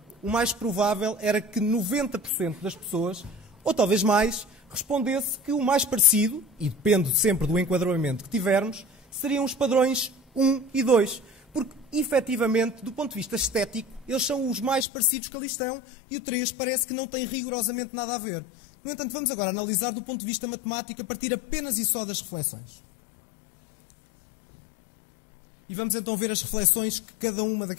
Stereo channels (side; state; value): right; drops out; at 14.9 s